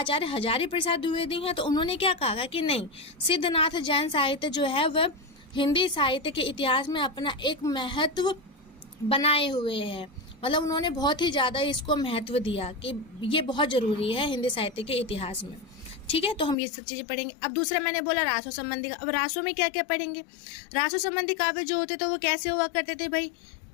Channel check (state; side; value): drops out; right; at 16.6 s